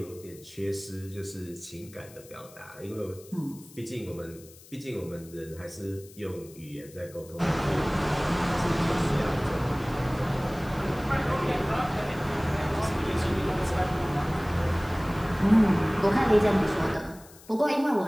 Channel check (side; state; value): left; noise; hiss, 22 dB below the sound